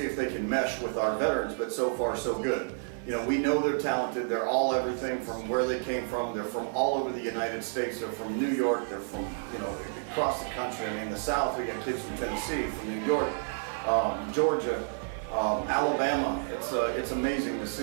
if they can mesh with our veterans, but so far so good. You know, we know they're talented. They're all everything from where they came from. They're from all over the United States. They're from New York. They're from, you know, across the country. I mean, the South, we got kids from Tennessee, from New York, Georgia, Alabama. It's amazing to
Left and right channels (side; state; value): left; silent; digital silence